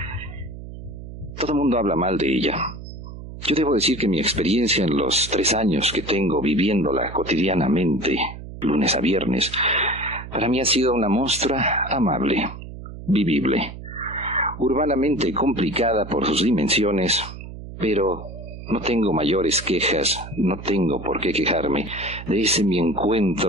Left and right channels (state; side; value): noise; right; hum, 12 dB below the sound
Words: Todo el mundo habla mal de ella. Yo debo decir que mi experiencia en los 3 años que tengo viviéndola cotidianamente, lunes a viernes, para mí ha sido una monstra amable, vivible, urbanamente complicada por sus dimensiones, pero no tengo mayores quejas, no tengo por qué quejarme de ese mi